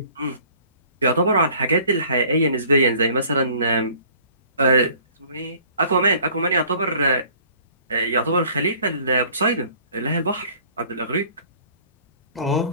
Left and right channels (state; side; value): inverted; both; correlation -0.53